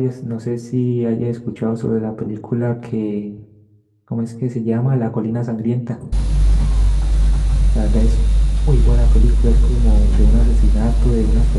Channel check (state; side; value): identical; both; correlation 1.00